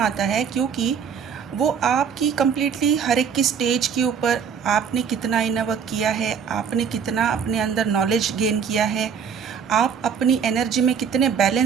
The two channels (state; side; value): quieter; left; 7.1 dB